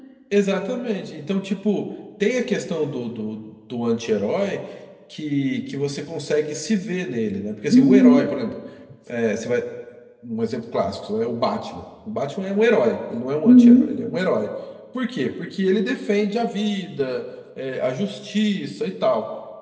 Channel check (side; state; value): both; identical; correlation 1.00